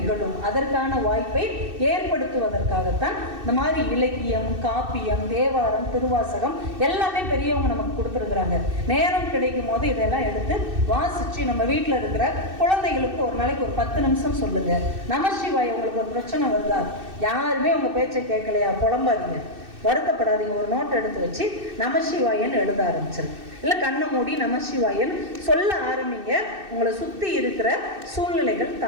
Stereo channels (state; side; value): late; left; 2.6 ms